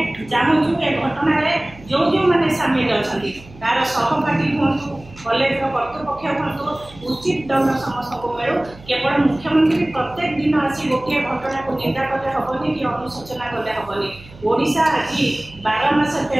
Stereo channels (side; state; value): right; noise; hum, 21 dB below the sound